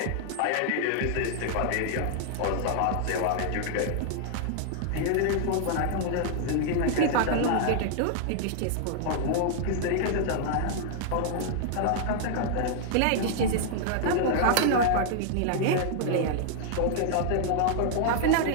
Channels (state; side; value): different; both; correlation -0.01